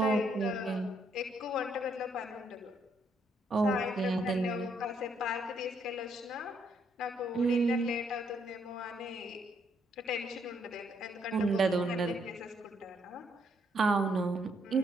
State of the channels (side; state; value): both; normal; correlation 0.72